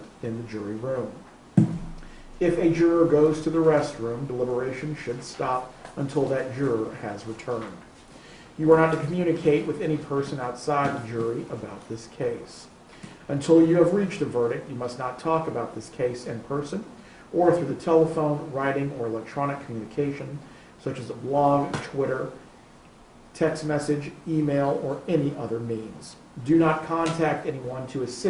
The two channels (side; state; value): both; identical; correlation 1.00